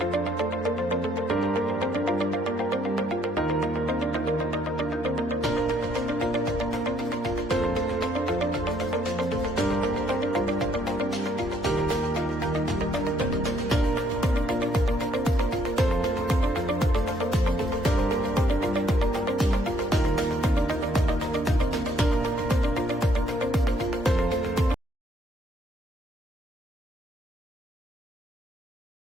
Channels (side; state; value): both; normal; correlation 0.67